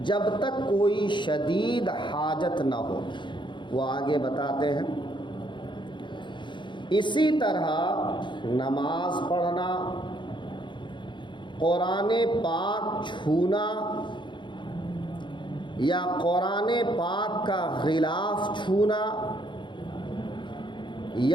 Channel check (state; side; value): late; right; 0.23 ms